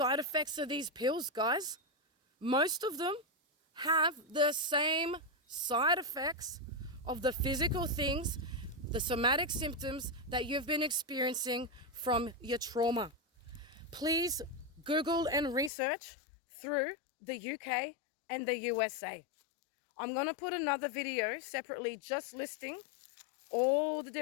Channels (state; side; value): drops out; right; at 15.7 s